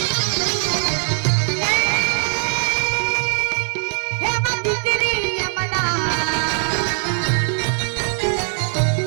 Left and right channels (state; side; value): silent; left; 65 dB below the other